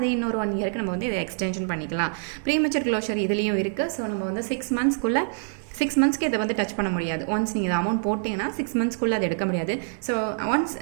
இன்னொரு 1 yearக்கு நம்ம வந்து இதை எக்ஸ்டென்ஷன் பண்ணிக்கலாம். ப்ரீமெச்சூர் க்ளோஷர் இதுலேயும் இருக்குது. ஸோ நம்ம வந்து 6 monthsக்குள்ளே 6 monthsக்கு இதை வந்து டச் பண்ண முடியாது. ஒன்ஸ் நீங்கள் இதை அமௌண்ட் போட்டிங்கன்னா 6 monthsக்குள்ளே அதை எடுக்க முடியாது. ஸோ ஒன்ஸ்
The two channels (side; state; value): left; silent; digital silence